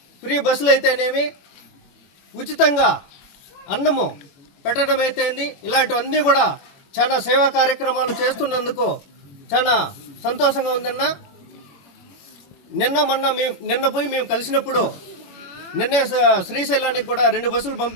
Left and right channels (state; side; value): late; right; 21 ms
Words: ఫ్రీ బస్సులు అయితేనేమి, ఉచితంగా అన్నము పెట్టడం అయితేంది, ఇలాంటివన్నీ కూడా చాలా సేవా కార్యక్రమాలు చేస్తున్నందుకు చాలా సంతోషంగా ఉందన్న. నిన్న పోయి మేము కలిసినప్పుడు నిన్నే శ్రీశైలానికి కూడా 2 బస్సులు